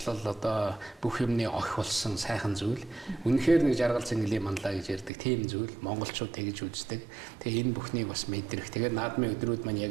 одоо бүх юмны охи болсон сайхан зүйл. Үнэхээр нэг жаргал цэнгэлийн манлаа гэж ярьдаг тийм зүйл монголчууд тэгж үздэг. Тэгээ энэ бүхнийг бас мэдрэх. Тэгээд наадмын өдрүүд маань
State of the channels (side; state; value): left; drops out; at 5.1 s